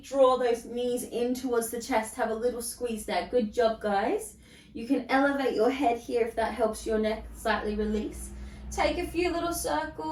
draw those knees in towards the chest. Have a little squeeze there. Good job, guys. You can elevate your head here if that helps your neck slightly release. Take a few little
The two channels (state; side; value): identical; both; correlation 1.00